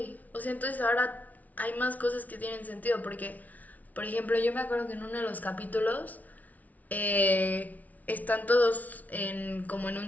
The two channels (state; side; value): late; right; 0.074 ms